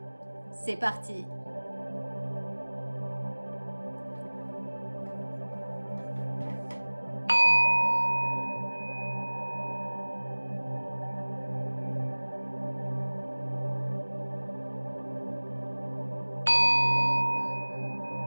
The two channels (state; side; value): inverted; both; correlation -1.00